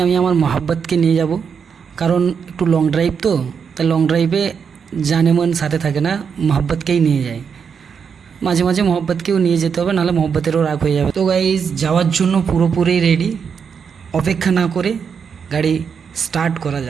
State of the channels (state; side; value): quieter; left; 6.6 dB